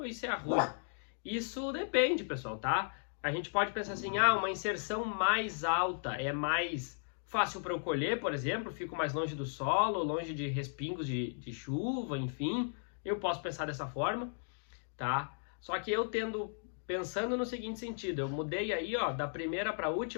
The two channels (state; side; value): silent; right; digital silence